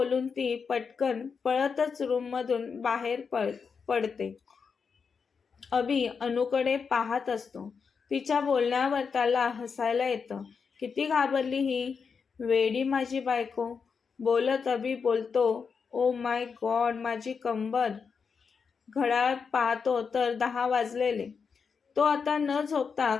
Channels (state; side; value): quieter; right; 5.8 dB